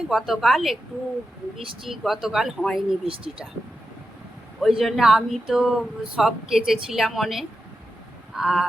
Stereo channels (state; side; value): normal; both; correlation 0.89